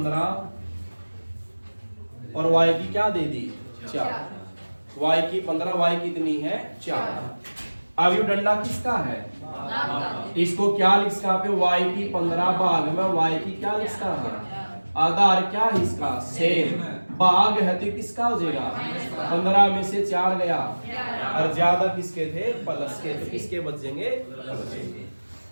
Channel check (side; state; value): both; inverted; correlation -1.00